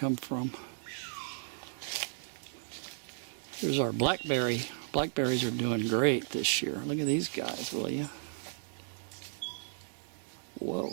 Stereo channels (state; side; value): silent; left; 55 dB below the other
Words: from. Here's our blackberry. Blackberries are doing great this year. Look at these guys, will you? Whoa.